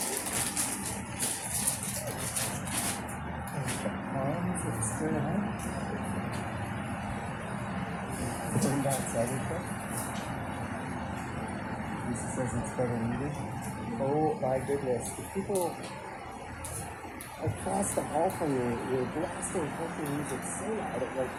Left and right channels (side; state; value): both; identical; correlation 1.00